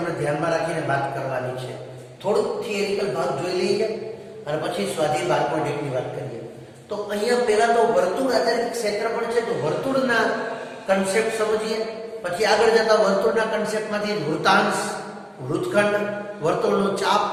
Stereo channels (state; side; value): identical; both; correlation 1.00